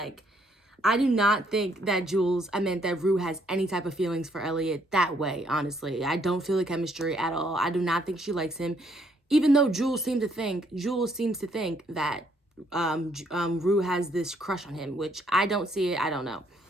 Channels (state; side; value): normal; both; correlation 0.69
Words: I do not think that Rue has any type of feelings for Elliot that way, honestly. I don't feel the chemistry at all. I do not think she likes him. Even though Jules seems to think that Rue has this crush on him, which I don't see it. I don't know.